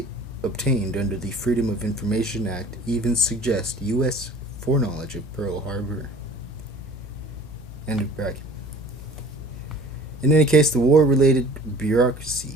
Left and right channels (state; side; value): normal; both; correlation 0.47